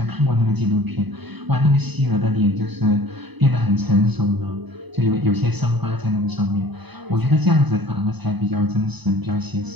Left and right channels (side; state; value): left; late; 0.99 ms